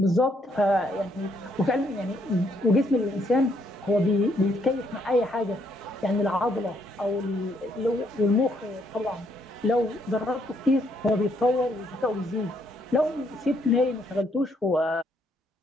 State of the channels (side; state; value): both; normal; correlation 0.72